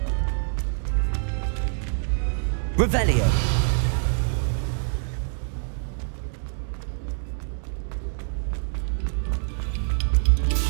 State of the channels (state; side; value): silent; left; 61 dB below the other